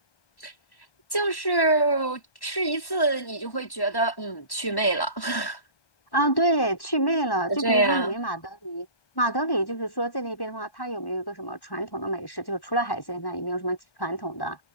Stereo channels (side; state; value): right; late; 1.1 ms